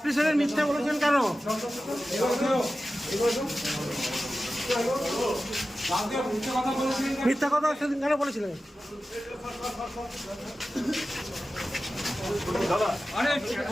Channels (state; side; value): normal; both; correlation 0.94